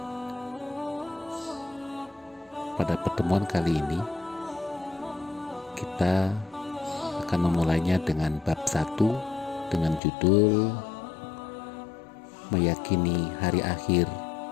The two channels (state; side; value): drops out; right; at 10.0 s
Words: pada pertemuan kali ini kita akan memulainya dengan bab 1 dengan judul Meyakini Hari Akhir